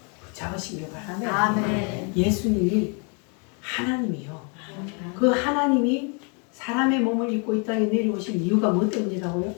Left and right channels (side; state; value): right; quieter; 36.0 dB